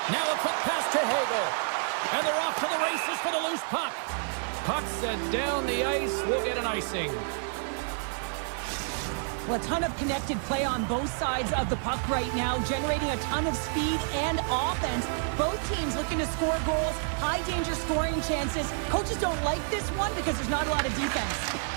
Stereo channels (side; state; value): left; silent; 59 dB below the other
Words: Now a quick pass to Hagel. And they're off to the races for the loose puck. Puck set down the ice. We'll get an icing. Well, a ton of connected play on both sides of the puck right now, generating a ton of speed and offense. Both teams looking to score goals, high-danger scoring chances. Coaches don't like this one because there's not a lot of defense.